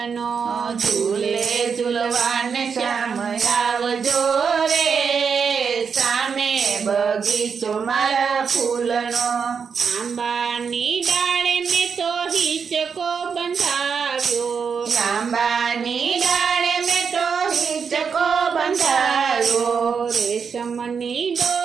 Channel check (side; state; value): left; quieter; 6.2 dB